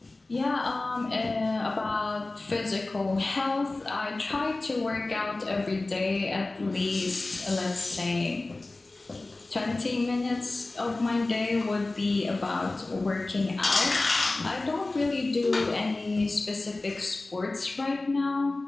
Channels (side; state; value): right; quieter; 3.1 dB